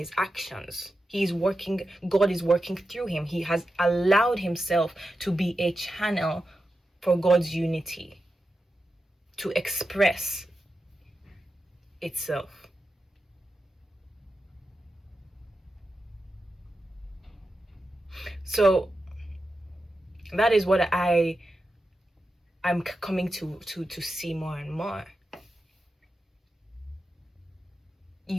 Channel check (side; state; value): both; normal; correlation 0.90